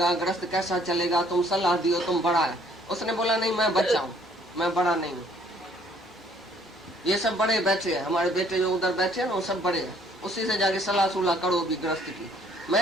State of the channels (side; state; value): both; normal; correlation 0.62